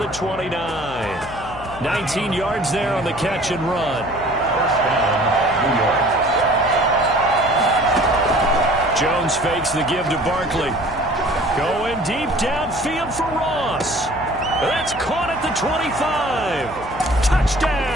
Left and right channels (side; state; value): left; noise; hum, 16 dB below the sound